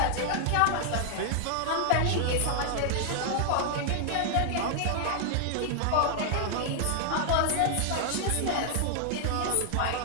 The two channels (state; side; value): different; both; correlation 0.00